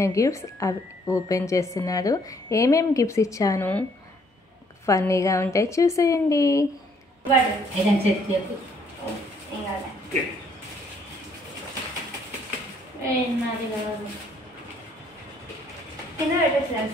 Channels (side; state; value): both; normal; correlation 0.66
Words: గిఫ్ట్స్ అవి ఓపెన్ చేస్తున్నాడు. ఏమేమి గిఫ్ట్స్ ఇచ్చాను ఫన్నీగా ఉంటాయి, చూసేయండి.